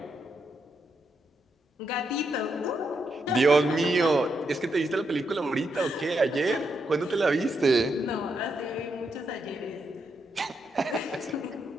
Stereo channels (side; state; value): both; normal; correlation 0.81